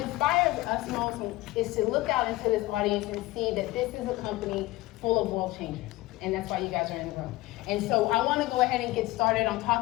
us most is to look out into this audience and see that this is a company full of world changers. And that's why you guys are in the room. And so I want to go ahead and get started on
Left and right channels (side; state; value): right; quieter; 19.2 dB